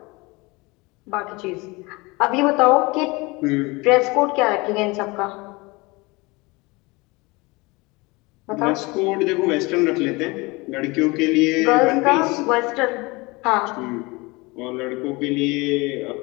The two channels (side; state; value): right; quieter; 24.5 dB